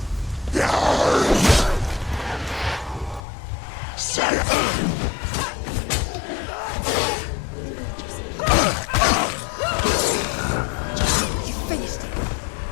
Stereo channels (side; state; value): right; drops out; at 3.2 s